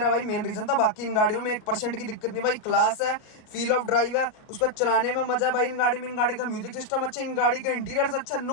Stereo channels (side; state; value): right; late; 37 ms